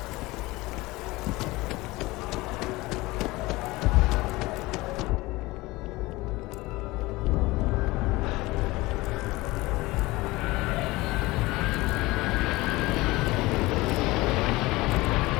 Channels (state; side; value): quieter; right; 20.8 dB